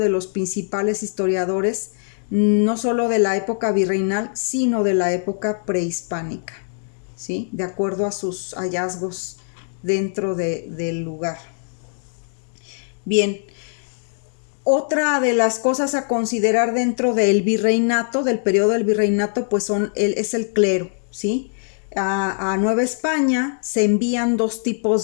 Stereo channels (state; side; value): silent; right; digital silence